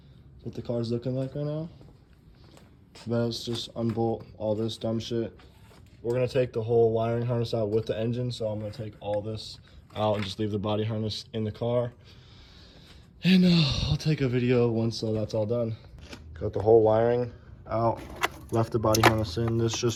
what the car's looking like right now. Let's just unbolt all this dumb shit. We're gonna take the whole wiring harness out with the engine, so I'm gonna take all this out and just leave the body harness in the car. And I'll take a video once that's all done. Got the whole wiring out, left the body harness in. This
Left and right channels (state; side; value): identical; both; correlation 1.00